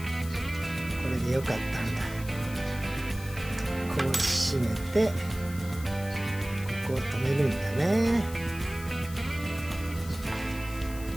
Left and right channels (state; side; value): noise; left; hiss, 16 dB below the sound